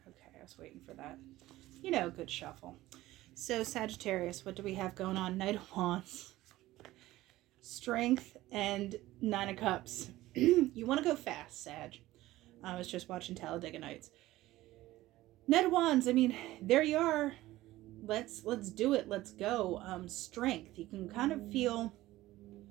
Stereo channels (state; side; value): quieter; left; 16.6 dB